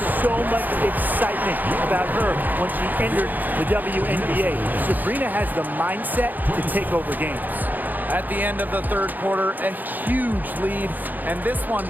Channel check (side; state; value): left; late; 0.085 ms